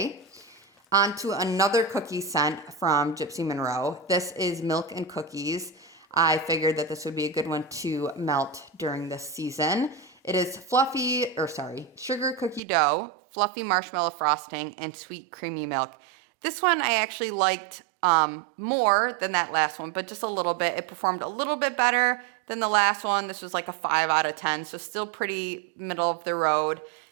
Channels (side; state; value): left; drops out; at 12.6 s